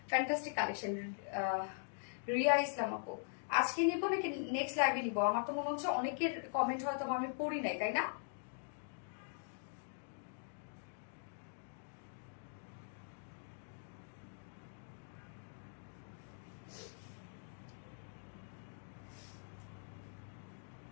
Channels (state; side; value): silent; right; digital silence